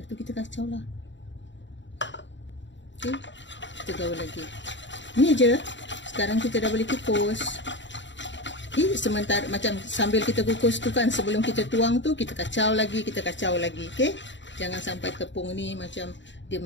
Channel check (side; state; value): right; late; 0.53 ms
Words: tu kita kacau lah. Okey, kita gaul lagi. Ni je. Sekarang kita dah boleh kukus. Okey, sementara macam sambil kita kukus tu kan, sebelum kita tuang tu, kita kacau lagi, Okey, jangan sampai tepung ni macam dia